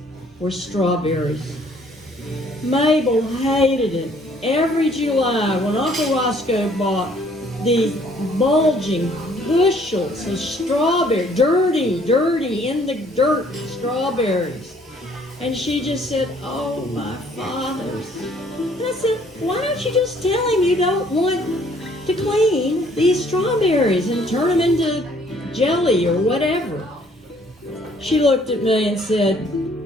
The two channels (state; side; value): normal; both; correlation 0.61